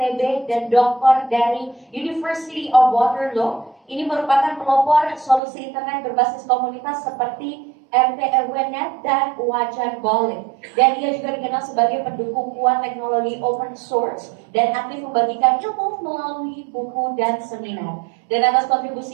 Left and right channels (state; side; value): drops out; left; at 5.4 s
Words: dan doktor dari University of Waterloo. Ini merupakan pelopor solusi internet berbasis komunitas seperti RTRWNet dan Wajan Boleh. Dan ia juga dikenal sebagai pendukung kuat teknologi open source dan aktif membagikan ilmu melalui buku dan seminar. Dan atas